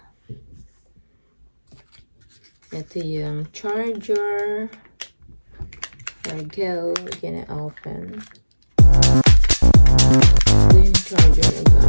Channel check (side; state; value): both; inverted; correlation -1.00